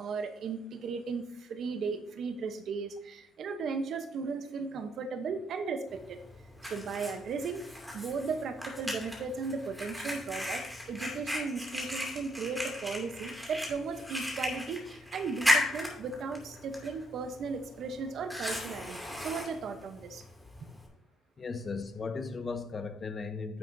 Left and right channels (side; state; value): both; normal; correlation 0.73